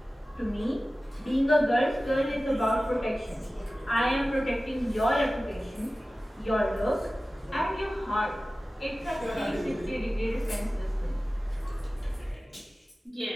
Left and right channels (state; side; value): normal; both; correlation 0.96